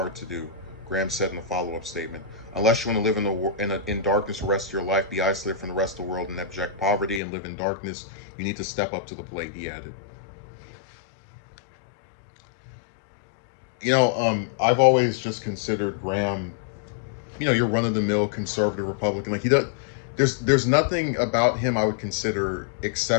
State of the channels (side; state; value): right; drops out; at 7.2 s